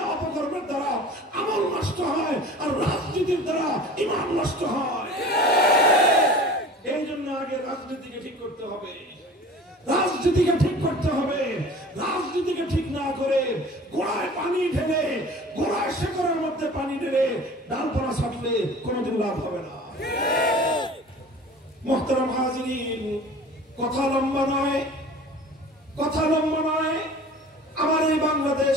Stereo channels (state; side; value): normal; both; correlation 0.42